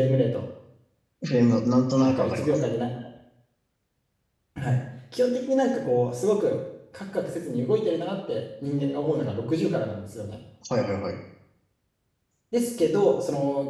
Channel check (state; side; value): identical; both; correlation 1.00